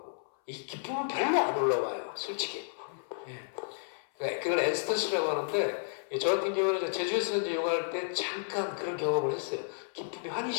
이 기쁨은 별로 안 올라와요. 솔직히. 예. 그걸 엔스터시라고 하는데 저 같은 경우는 제주에서 이제 요가할 때 잠깐 그런 경험을 했어요. 기쁨이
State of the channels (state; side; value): silent; right; 56 dB below the other